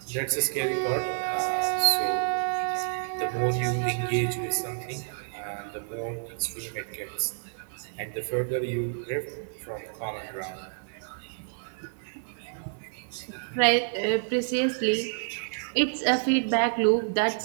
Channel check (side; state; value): left; silent; 59 dB below the other